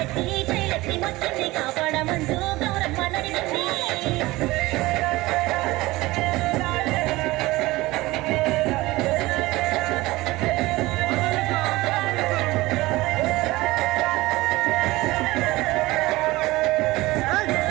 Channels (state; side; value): quieter; left; 19.7 dB